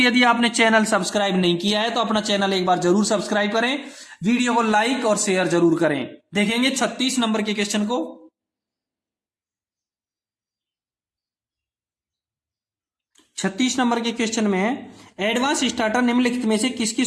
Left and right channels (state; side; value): identical; both; correlation 1.00